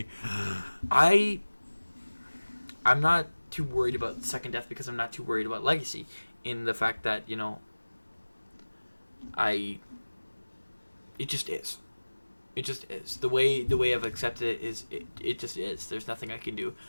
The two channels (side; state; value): both; inverted; correlation -1.00